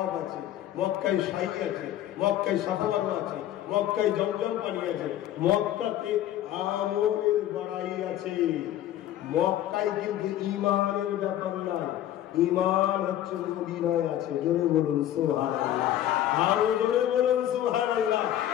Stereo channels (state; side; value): quieter; right; 12.3 dB